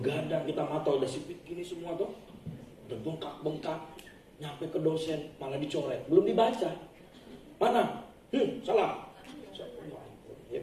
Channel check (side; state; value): both; identical; correlation 1.00